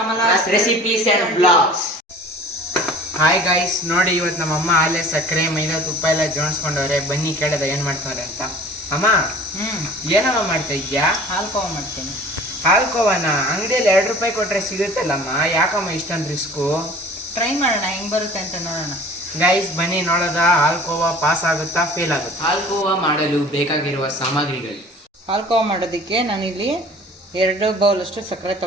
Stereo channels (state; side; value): normal; both; correlation 0.45